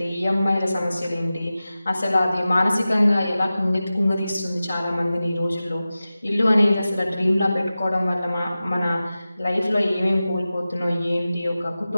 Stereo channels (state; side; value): inverted; both; correlation -0.95